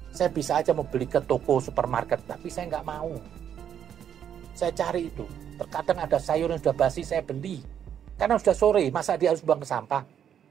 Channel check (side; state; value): left; quieter; 9.0 dB